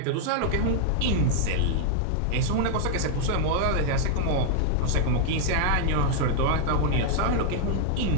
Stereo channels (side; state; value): both; different; correlation -0.01